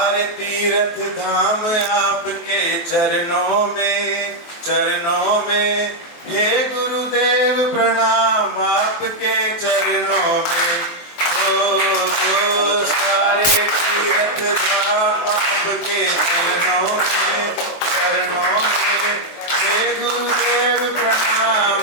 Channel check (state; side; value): late; right; 23 ms